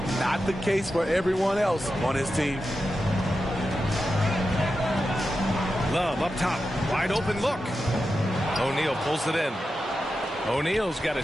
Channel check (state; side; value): normal; both; correlation 0.90